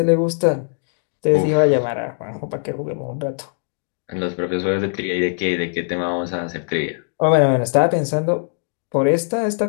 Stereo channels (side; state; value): right; silent; digital silence